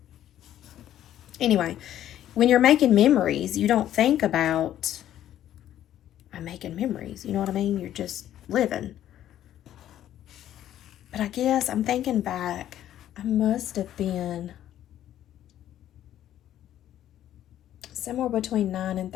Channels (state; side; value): quieter; right; 11.8 dB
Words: Anyway, when you're making memories, you don't think about, I'm making memories, you know what I mean? You're just living. But I guess I'm thinking back, I must have been somewhere between 9 and